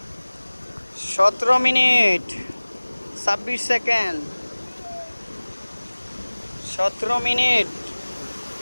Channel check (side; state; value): both; inverted; correlation -1.00